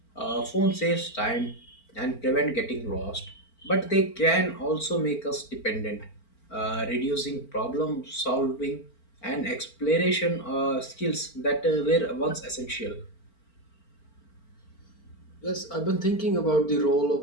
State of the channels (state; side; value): late; right; 4.4 ms